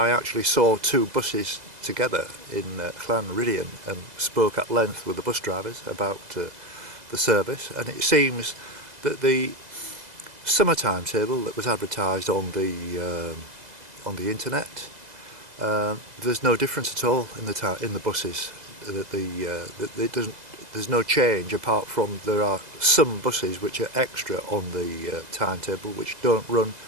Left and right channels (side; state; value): left; late; 2.0 ms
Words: actually saw two buses together in Llanmadoc and spoke at length with the bus drivers about the service, and it seems that the summer timetable that was advertised on the internet, there's no difference at all in the buses. There's no change, apart from there are some buses which are extra on the timetable which don't run